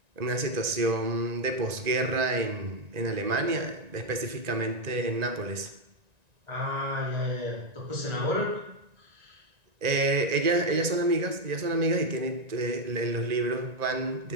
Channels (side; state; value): left; late; 1.9 ms